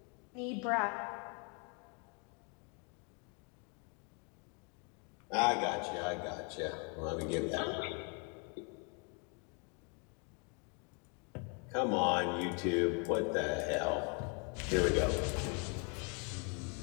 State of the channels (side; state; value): right; quieter; 36.0 dB